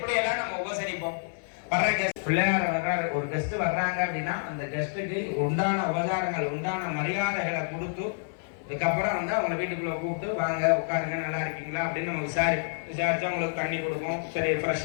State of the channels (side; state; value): right; silent; 59 dB below the other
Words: எல்லாம் நம்ம உபசரிப்போம். வர்ற கெஸ்ட் பிள்ளையார் வர்றாரு, ஒரு கெஸ்ட் வர்றாங்க அப்படின்னா அந்த கெஸ்ட்டுக்கு உண்டான உபச்சாரங்கள் உண்டான மரியாதைகளை கொடுத்து இதுக்கப்புறம் வந்து அவங்க வீட்டுக்குள்ள கூப்பிட்டு வாங்க உட்காருங்க நல்லா இருக்கீங்களா அப்படின்னு நம்ம விசாரிச்சு அவங்களுக்கு தண்ணி கொடுப்போம். சரி ஃப்ரெஷ்